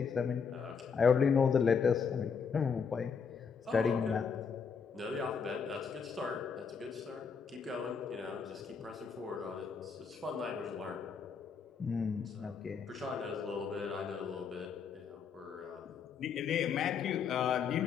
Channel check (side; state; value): right; quieter; 6.1 dB